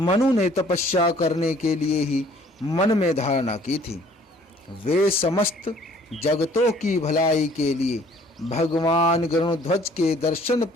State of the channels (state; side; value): normal; both; correlation 0.56